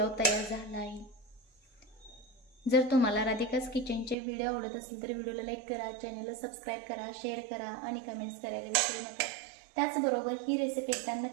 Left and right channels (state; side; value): drops out; left; at 4.2 s